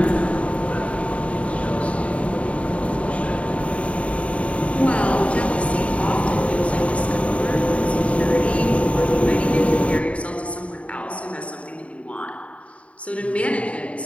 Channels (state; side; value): late; right; 0.064 ms